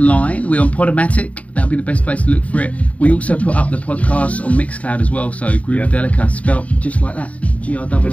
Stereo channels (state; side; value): late; right; 0.067 ms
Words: We're on Podomatic. That'll be the best place to look for it. We also put up the podcast on Mixcloud as well. So Groovadelica, spelt just like that. G-R-O-O-V-A-D-E-L-I-C-A.